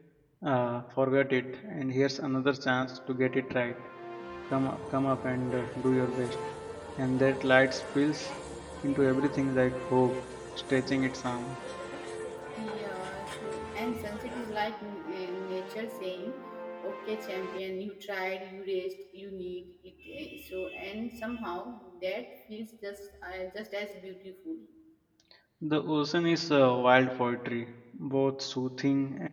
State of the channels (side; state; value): both; identical; correlation 1.00